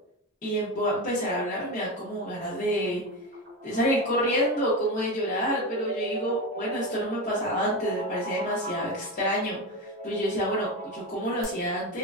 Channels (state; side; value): normal; both; correlation 0.19